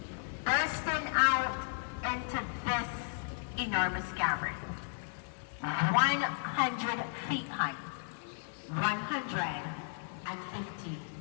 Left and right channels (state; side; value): silent; right; digital silence